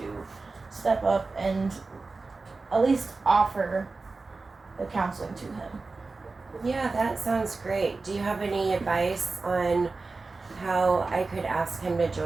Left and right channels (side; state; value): left; quieter; 3.8 dB